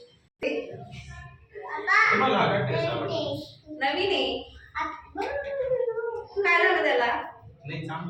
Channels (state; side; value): identical; both; correlation 1.00